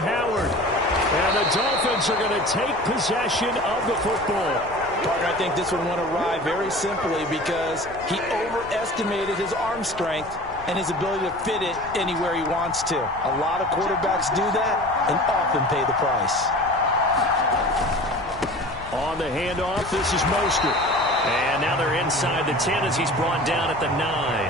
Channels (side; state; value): left; noise; rumble, 18 dB below the sound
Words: And the Dolphins are going to take possession of the football. Partner, I think this one went awry very simply because he overestimated his arm strength and his ability to fit it anywhere he wants to. A lot of quarterbacks do that and often pay the price. On the handoff, this is Mostert. And now they're inside the 10 as he's brought down at the